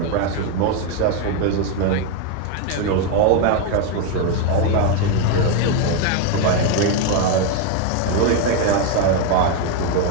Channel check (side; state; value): both; different; correlation 0.02